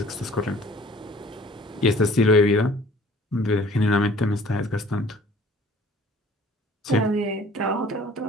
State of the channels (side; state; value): both; normal; correlation 0.52